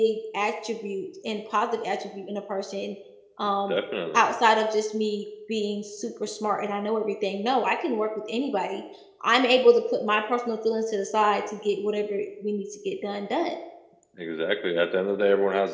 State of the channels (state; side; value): identical; both; correlation 1.00